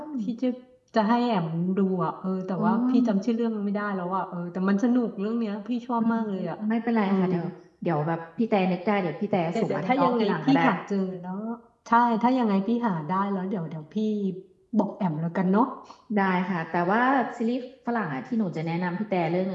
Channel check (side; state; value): both; identical; correlation 1.00